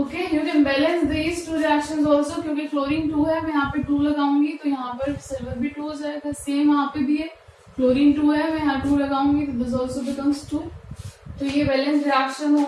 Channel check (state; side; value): identical; both; correlation 1.00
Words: you can balance these two reactions also, क्योंकि क्लोरीन 2 है, मैं यहाँ पे 2 लगाऊंगी तो यहाँ पर सिल्वर भी 2 हो जाएगा. सेम यहाँ पे भी है, क्लोरीन 2 है, मैं यहाँ 2 लगाऊंगी तो दिस आल्सो बिकम्स 2. तो ये बैलेंस रिएक्शन हो